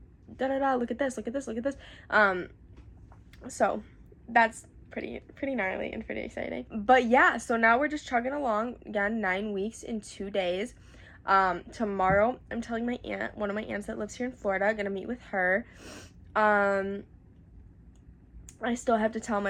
da-da-da, look at this. So that's pretty gnarly and pretty exciting. But yeah, so now we're just chugging along. Again, 9 weeks in 2 days. Tomorrow I'm telling my aunt, one of my aunts that lives here in Florida, gonna meet with her. I still have to tell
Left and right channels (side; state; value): both; identical; correlation 1.00